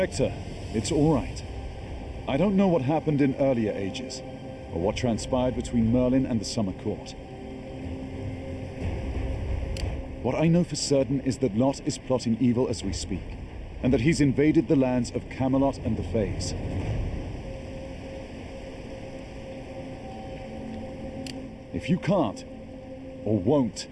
it's all right. I don't know what happened in earlier ages, or what transpired between Merlin and the Summer Court. What I know for certain is that Lot is plotting evil as we speak, and that he's invaded the lands of Camelot and the Fays. If you can't, or won't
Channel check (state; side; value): identical; both; correlation 1.00